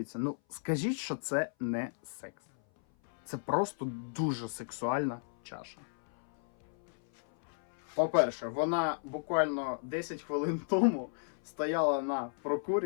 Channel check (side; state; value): right; silent; 55 dB below the other